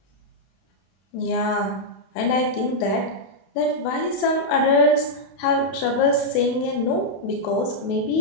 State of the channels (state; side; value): late; right; 32 ms